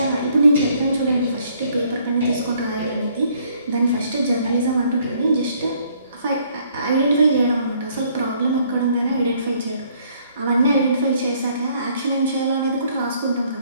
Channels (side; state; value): both; inverted; correlation -0.64